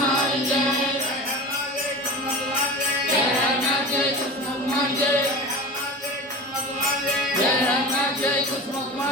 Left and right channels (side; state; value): both; normal; correlation 0.32